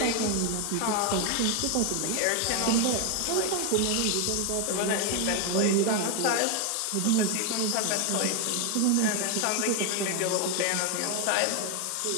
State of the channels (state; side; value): different; both; correlation 0.01